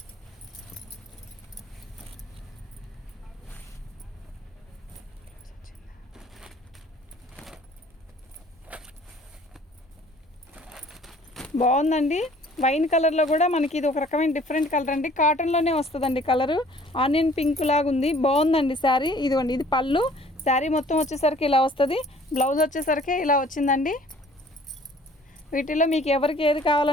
బాగుందండి. వైన్ కలర్లో కూడా మనకి ఇది ఒక రకమైన డిఫరెంట్ కలర్ అండి. కాటన్లోనే వస్తుందండి కలరు. ఆనియన్ పింక్ లాగా ఉంది, బాగుందండి శారీ. ఇదిగోండి ఇది పళ్ళు. శారీ మొత్తం వచ్చేసరికి ఇలా వస్తుంది. బ్లౌజ్ వచ్చేసరికి ఇలా వచ్చిందండి. వీటిలో మీకు ఎవరికి ఏది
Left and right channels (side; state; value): both; normal; correlation 0.54